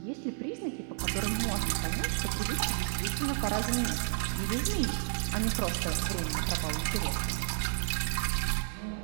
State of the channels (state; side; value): silent; left; 55 dB below the other